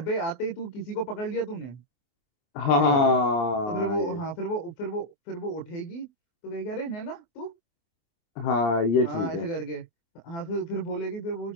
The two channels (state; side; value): late; right; 26 ms